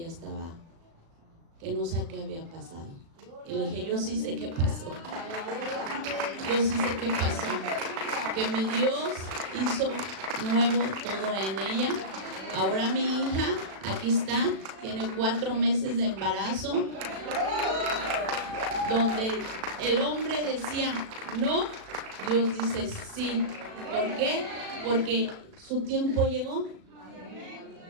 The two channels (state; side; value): late; left; 36 ms